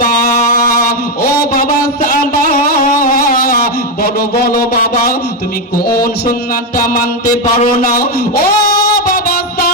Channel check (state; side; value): normal; both; correlation 0.06